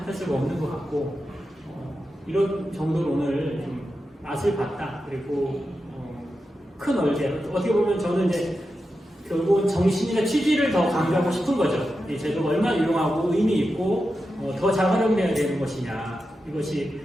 할 수가 없는 것 같고 이런 정도로 오늘 좀 맛을 봤다. 그리고 큰 얼개 어떻게 보면 저는 이제 결국은 정신이나 취지를 더 강조하고 싶은 거죠. 이 제도가 얼마나 유용하고 의미 있고 더 잘 활용돼야 되는 것이냐 이것이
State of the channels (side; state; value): both; normal; correlation 0.90